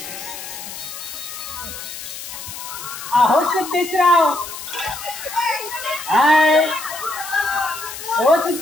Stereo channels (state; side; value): noise; left; hiss, 10 dB below the sound